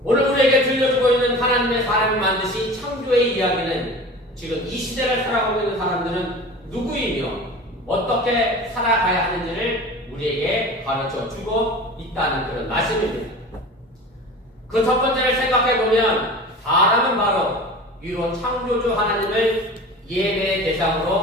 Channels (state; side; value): normal; both; correlation 0.37